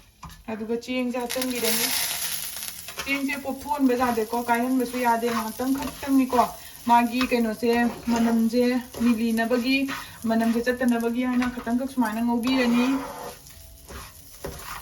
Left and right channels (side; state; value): both; identical; correlation 1.00